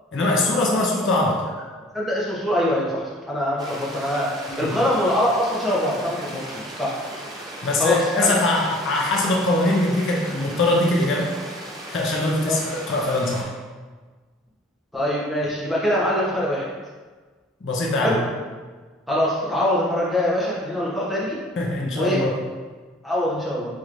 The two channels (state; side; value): normal; both; correlation 0.49